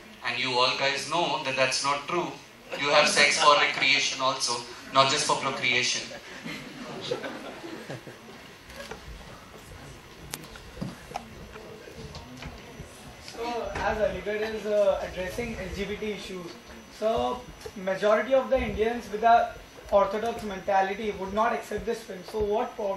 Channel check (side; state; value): both; identical; correlation 1.00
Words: and you all guys know that that's not true. You have sex for recreation also, not just for procreation. So, as Aligarh is addressing LGBT issues, so majority of the Indians with a orthodox mentality would not accept this film. So, what